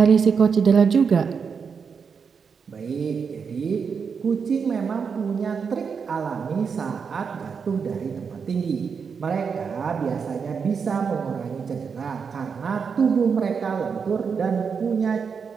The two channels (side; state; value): left; quieter; 6.0 dB